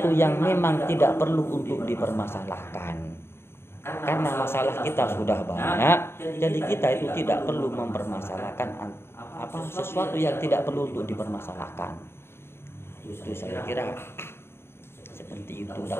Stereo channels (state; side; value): late; right; 0.12 ms